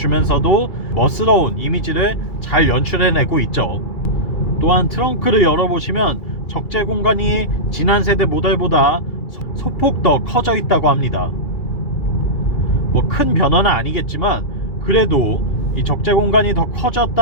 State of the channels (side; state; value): right; late; 2.4 ms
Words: 멋스러운 이미지를 잘 연출해내고 있죠. 또한 트렁크를 열어보시면 적재 공간이 지난 세대 모델보다 소폭 더 커져 있다고 합니다. 뭐 큰 변화는 아니겠지만 그래도 이 적재 공간이 더